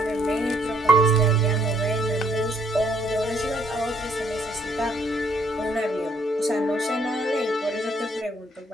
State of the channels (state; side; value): normal; both; correlation 0.66